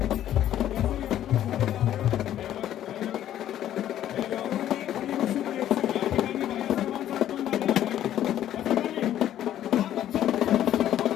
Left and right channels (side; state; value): right; quieter; 11.7 dB